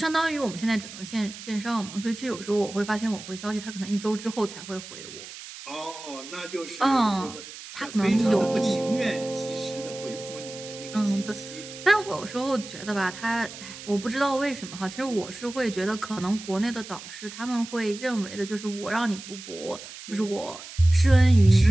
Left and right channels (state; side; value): noise; right; hiss, 13 dB below the sound